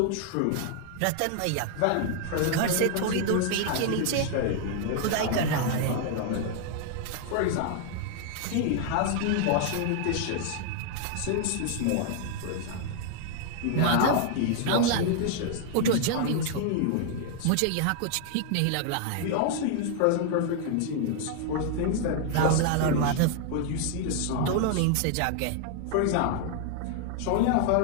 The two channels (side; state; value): both; different; correlation 0.00